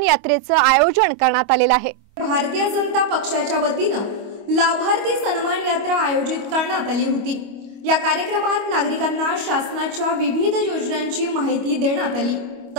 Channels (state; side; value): late; left; 25 ms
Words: यात्रेचे आयोजन करण्यात आलेले आहे। भारतीय जनता पक्षाच्या वतीने लाभार्थी सन्मान यात्रा आयोजित करण्यात आली होती। या कार्यक्रमात नागरिकांना शासनाच्या विविध योजनांची माहिती देण्यात आली,